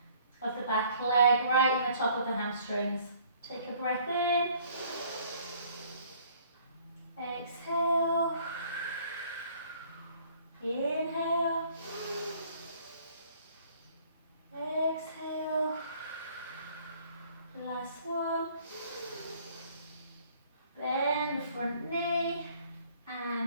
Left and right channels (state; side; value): inverted; both; correlation -0.58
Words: of the back leg, right in the top of the hamstrings. Take a breath in, exhale, inhale, exhale. Last one. Bend the front knee